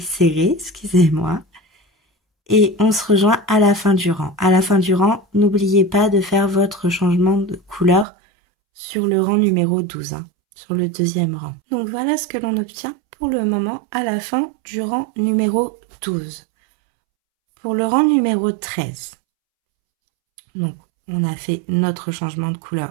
serrées, excusez-moi. Et on se rejoint à la fin du rang. À la fin du rang, n'oubliez pas de faire votre changement de couleur sur le rang numéro 12, sur le 2e rang. Donc, voilà ce que l'on obtient pour le moment à la fin du rang numéro 12. Pour le rang numéro 13, donc, on a fait notre changement de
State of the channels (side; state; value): left; drops out; at 8.1 s